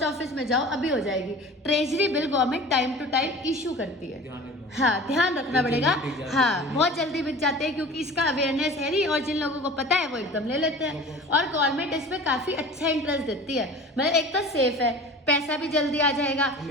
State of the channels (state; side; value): normal; both; correlation 0.40